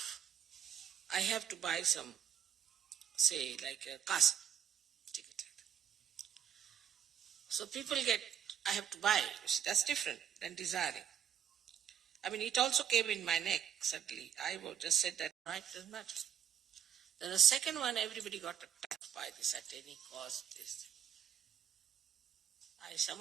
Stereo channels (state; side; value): quieter; left; 9.0 dB